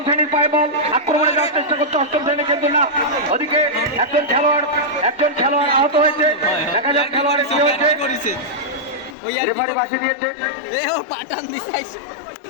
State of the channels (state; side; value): drops out; right; at 9.2 s